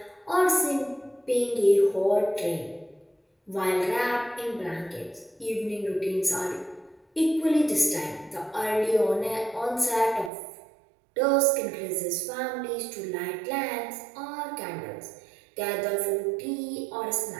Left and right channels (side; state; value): left; drops out; at 10.3 s